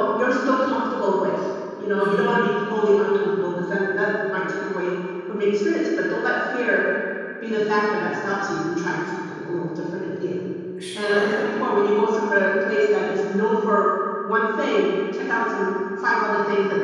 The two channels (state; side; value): identical; both; correlation 1.00